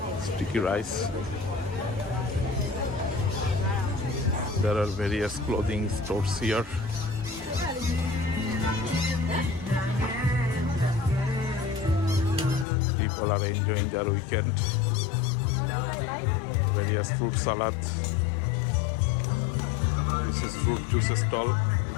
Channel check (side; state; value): right; drops out; at 12.7 s